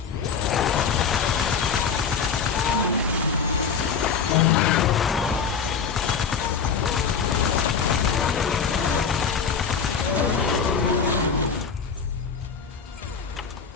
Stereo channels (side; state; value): right; quieter; 6.2 dB